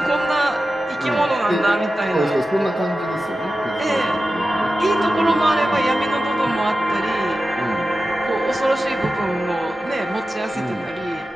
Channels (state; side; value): normal; both; correlation 0.93